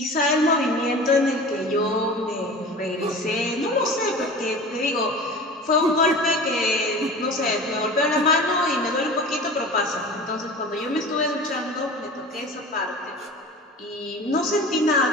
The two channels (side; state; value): both; normal; correlation 0.37